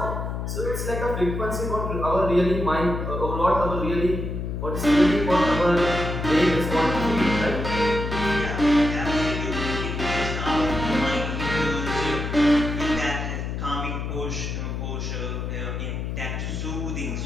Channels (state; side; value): noise; left; hum, 4 dB below the sound